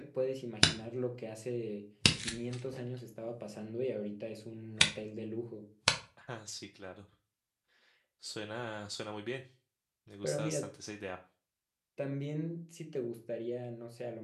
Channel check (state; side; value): identical; both; correlation 1.00